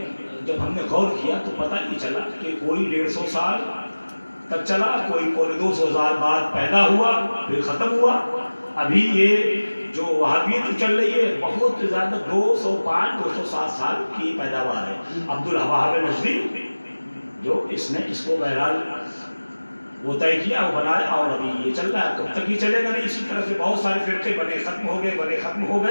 جب ہم نے غور کیا تو پتہ نہیں چلا کہ کوئی 150 سال تک چلا، کوئی 200 سال بعد پیدا ہوا پھر ختم ہوا. ابھی یہ جو وہابیت چل رہی ہے بہت زیادہ 205 207 سال کی پیداوار ہے. عبدالوہاب نجدی جو اس نے اس کو بہرحال وہ طے کیا، وہ بنایا اور ابھی یہ چل رہا ہے. کب تک یہ چلے گا نہیں. اسی طرح سے بہت سارے فرقے بنے ختم ہو گئے، ختم ہو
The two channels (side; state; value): both; inverted; correlation -1.00